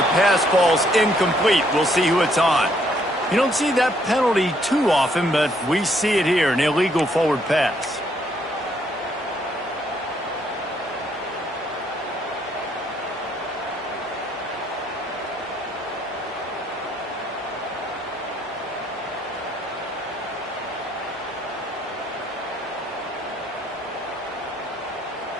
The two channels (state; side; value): normal; both; correlation 0.69